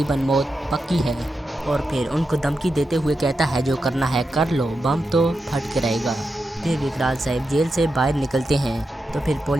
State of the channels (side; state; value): both; normal; correlation 0.88